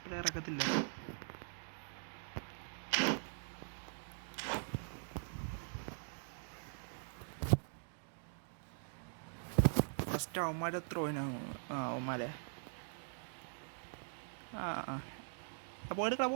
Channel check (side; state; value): left; silent; digital silence